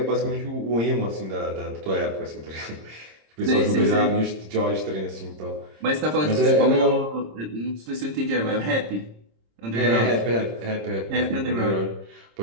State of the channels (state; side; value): late; left; 26 ms